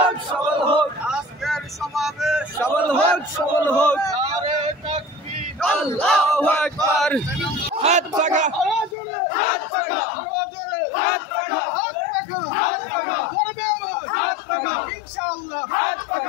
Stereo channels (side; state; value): right; drops out; at 9.0 s